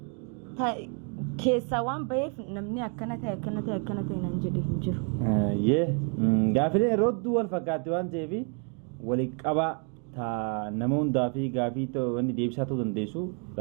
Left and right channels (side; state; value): left; quieter; 39.6 dB